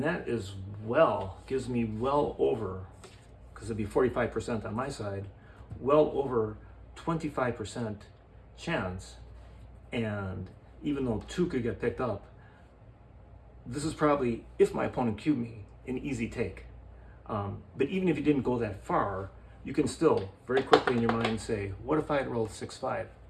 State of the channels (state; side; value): identical; both; correlation 1.00